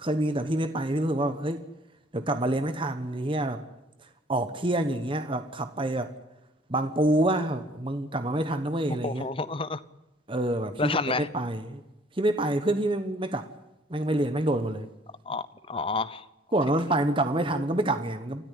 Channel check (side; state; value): both; normal; correlation 0.57